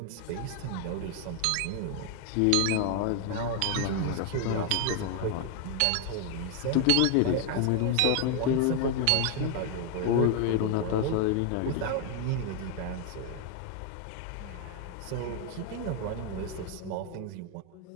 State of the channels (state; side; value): different; both; correlation 0.00